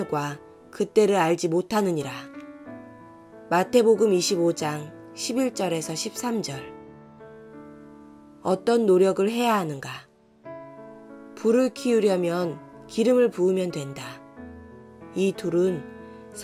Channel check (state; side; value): identical; both; correlation 1.00